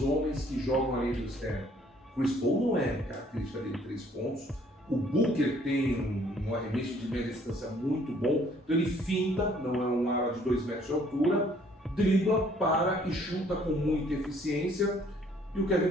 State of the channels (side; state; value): both; normal; correlation 0.61